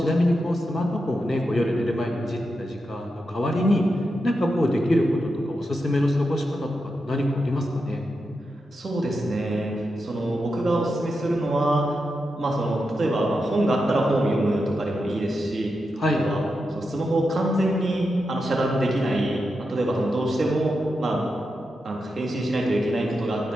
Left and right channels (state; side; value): normal; both; correlation 0.87